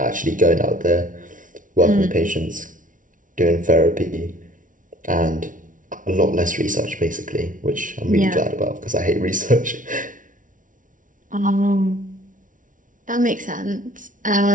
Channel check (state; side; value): late; left; 0.38 ms